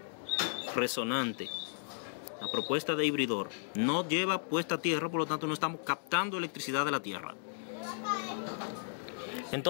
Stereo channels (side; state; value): right; silent; digital silence